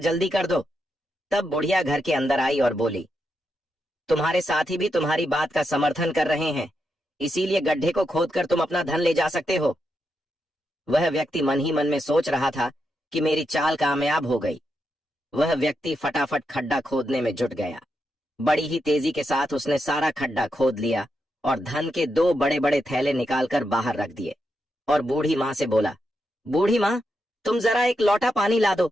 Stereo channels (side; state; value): both; normal; correlation 0.84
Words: कर दो। तब बुढ़िया घर के अंदर आई और बोली, तुम्हारे साथी भी तुम्हारी बात का समर्थन कर रहे हैं, इसीलिए गड्ढे को खोदकर तुम अपना धन ले जा सकते हो। वह व्यक्ति मन ही मन में सोच रहा था कि मेरी चाल कामयाब हो गई। वह व्यक्ति फटाफट खड्डा खोदने में जुट गया। बड़ी ही तेजी के साथ उसने सारा खड्डा खोद लिया और धन के 2 बड़े बड़े थैले निकालकर बाहर रख दिए और बूढ़ी माँ से बोला, बूढ़ी माँ, तुम जरा एक लोटा पानी ला दो,